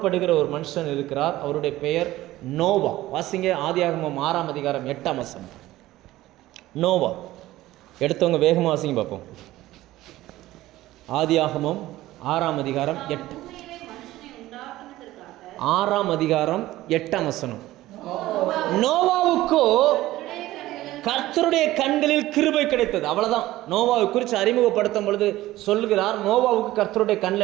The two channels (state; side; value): quieter; left; 16.2 dB